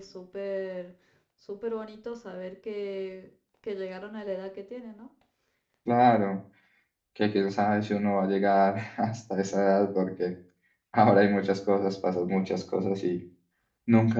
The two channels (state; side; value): identical; both; correlation 1.00